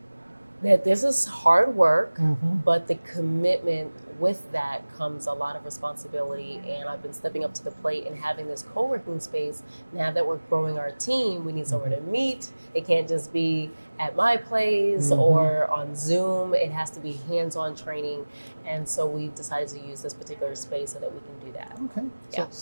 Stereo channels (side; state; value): both; inverted; correlation -1.00